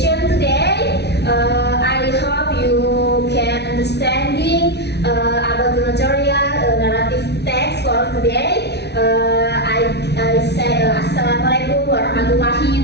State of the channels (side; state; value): right; late; 0.49 ms